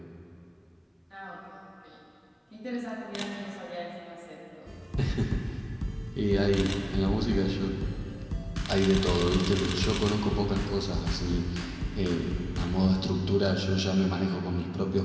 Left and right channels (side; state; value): both; identical; correlation 1.00